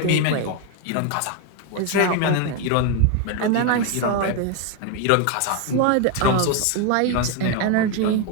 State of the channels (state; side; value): different; both; correlation 0.01